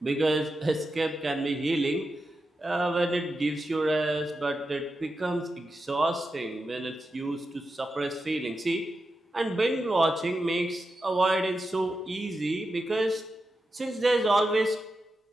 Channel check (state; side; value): normal; both; correlation 0.89